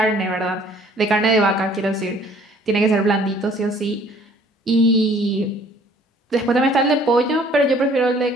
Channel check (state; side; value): normal; both; correlation 0.56